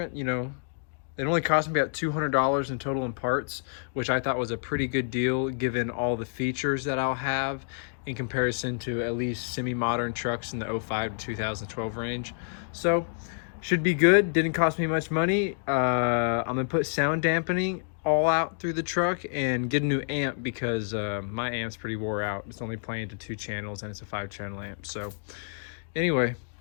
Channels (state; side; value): silent; right; digital silence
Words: You know, it only cost me about $200 in total in parts, which I thought was a pretty good deal given all the features that I'll have in comparison to at least semi-modern trucks in the 05 to 2012 range. So should be good. Didn't cost me much money. I'm gonna put sound dampening all out through the truck and get a new amp because my amp's pretty wore out. It's only playing to 2 channels and it's a 5-channel amp. So anyway,